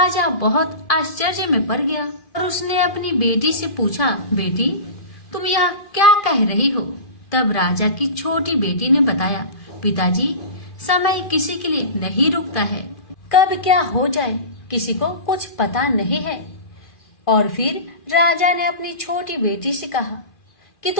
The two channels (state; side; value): late; right; 2.4 ms